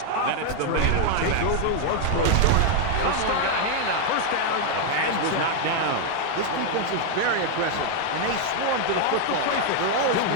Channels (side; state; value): both; different; correlation 0.00